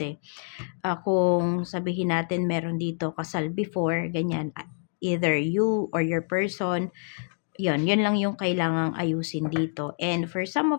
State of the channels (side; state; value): right; silent; 60 dB below the other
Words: kung sabihin natin meron dito kasal before, ganyan, either you or your person, yun lang yung kailangang ayusin dito. And for some